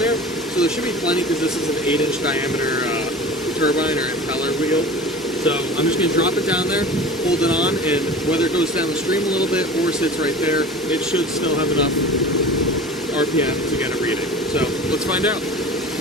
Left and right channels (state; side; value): normal; both; correlation 0.37